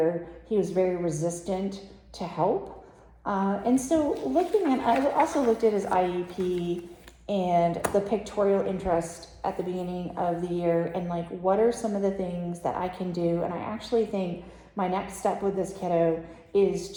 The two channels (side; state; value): both; identical; correlation 1.00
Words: he was very resistant to help. And so I also looked at his IEP and the pictorial interest at the beginning of the year, and like, what are some of the things that I can do? And I actually think my next step with this kiddo